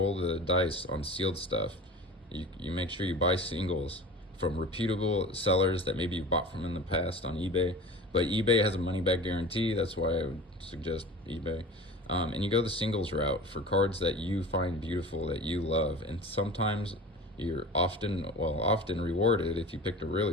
the dice on sealed stuff. You make sure you buy singles from reputable sellers that maybe you've bought from in the past on eBay. But eBay has a money back guarantee. That's why I would suggest eBay. And you go the singles route for cards that you find beautiful, that you love. And sometimes you're often rewarded if you picked a really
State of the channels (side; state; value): both; normal; correlation 0.36